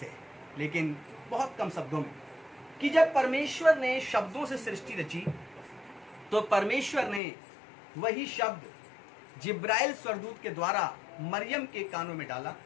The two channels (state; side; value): drops out; right; at 7.2 s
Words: है, लेकिन बहुत कम शब्दों में कि जब परमेश्वर ने शब्दों से सृष्टि रची तो परमेश्वर ने वही शब्द जिब्राइल स्वर्गदूत के द्वारा मरियम के कानों में डाला,